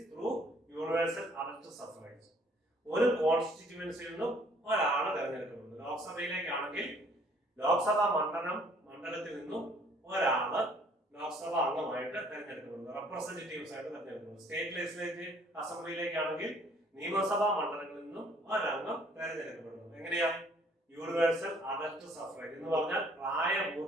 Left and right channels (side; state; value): both; normal; correlation 0.60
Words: through universal adult suffrage. ഒരു കോൺസ്റ്റിറ്റ്യുവൻസിയിൽ നിന്നും ഒരാളെ തെരഞ്ഞെടുക്കുന്നത്. ലോക്സഭയിലേക്കാണെങ്കിൽ ലോക്സഭാ മണ്ഡലത്തിൽ നിന്നും ഒരാള് ലോക്സഭ അംഗമായിട്ട് തെരഞ്ഞെടുക്കപ്പെടുന്നു, റെപ്രസെന്റേറ്റീവ്സ് ആയിട്ട് തെരഞ്ഞെടുക്കുന്നു. സ്റ്റേറ്റ് ലെജിസ്ലേറ്റീവ് അസംബ്ലിയിലേക്കാണെങ്കിൽ നിയമസഭാ മണ്ഡലങ്ങളിൽ നിന്നും ഒരംഗം തെരഞ്ഞെടുക്കപ്പെടുന്നു. എങ്ങനെയാ? യൂണിവേഴ്സൽ അഡൽട്ട് സഫ്രേജ് എന്ന് പറഞ്ഞാൽ